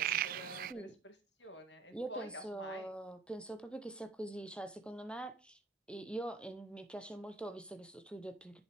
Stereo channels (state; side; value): quieter; left; 4.3 dB